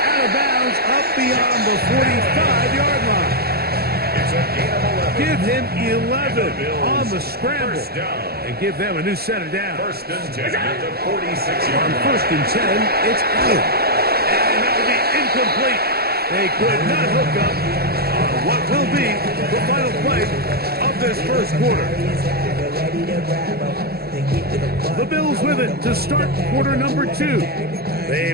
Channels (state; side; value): late; left; 0.46 ms